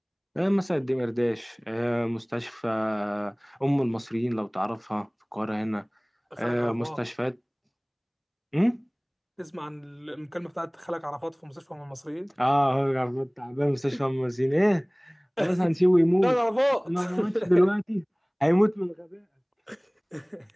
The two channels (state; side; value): identical; both; correlation 1.00